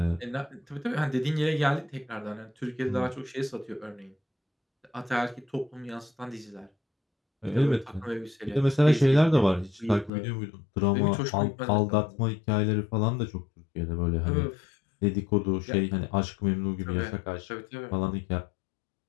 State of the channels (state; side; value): drops out; right; at 10.1 s